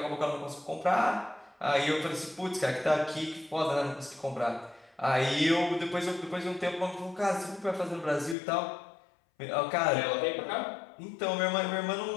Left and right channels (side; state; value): right; drops out; at 8.3 s